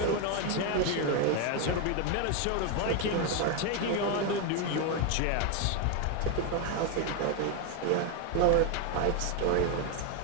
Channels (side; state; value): both; different; correlation 0.01